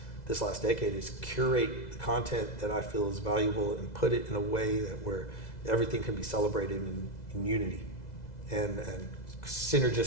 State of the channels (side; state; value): right; late; 2.0 ms